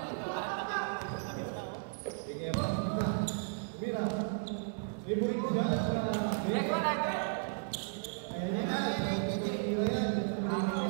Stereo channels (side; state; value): left; silent; digital silence